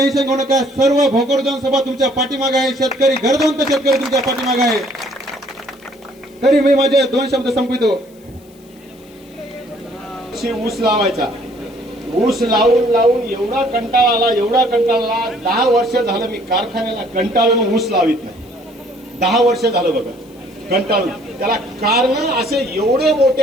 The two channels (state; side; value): noise; left; hiss, 29 dB below the sound